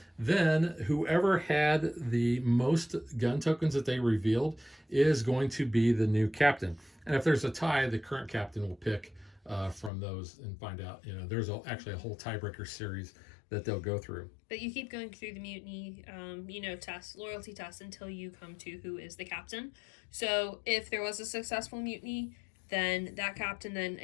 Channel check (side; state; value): right; drops out; at 9.9 s